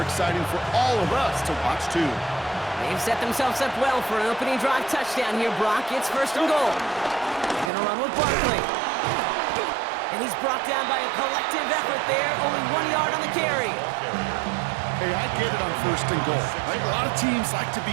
exciting for all of us to watch too. They've set themselves up well for an opening drive touchdown here, Brock. It's 1st and goal. They're going to run with Barkley. And he's brought down by a collective effort there. Only 1 yard on the carry. Hey, I get it on 1st and goal. Right? A lot of teams like to be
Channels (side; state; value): left; drops out; at 7.7 s